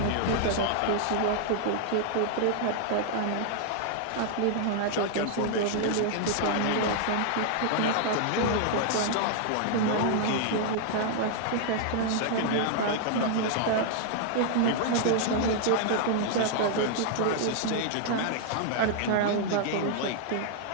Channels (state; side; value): different; both; correlation -0.01